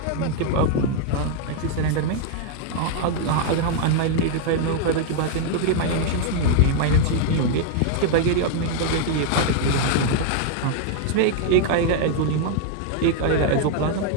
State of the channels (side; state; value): both; different; correlation 0.00